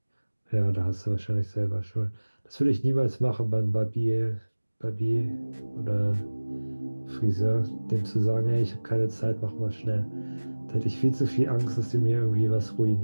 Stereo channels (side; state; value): both; inverted; correlation -1.00